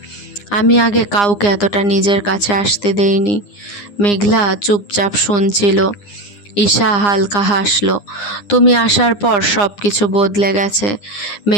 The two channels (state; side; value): late; right; 9.8 ms